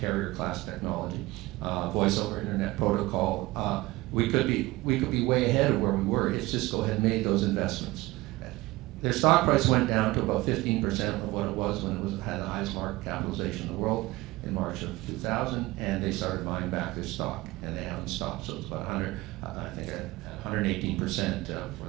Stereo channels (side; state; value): left; quieter; 20.1 dB